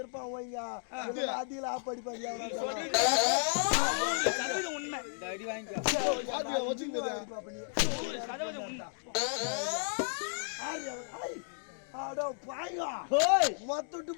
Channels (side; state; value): right; silent; digital silence